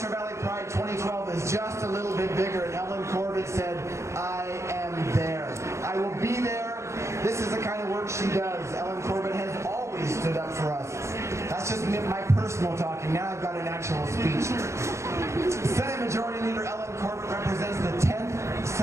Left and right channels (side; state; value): left; late; 0.14 ms